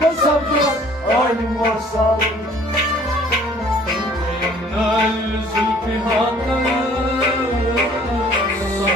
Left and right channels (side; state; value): both; normal; correlation 0.55